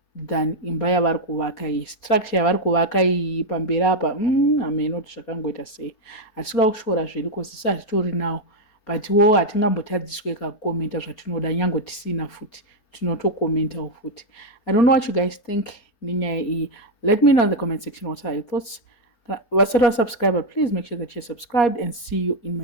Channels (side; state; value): right; late; 4.3 ms